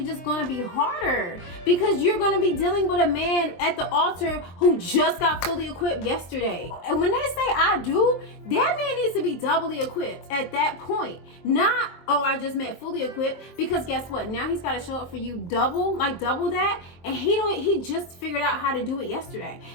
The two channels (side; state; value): right; late; 23 ms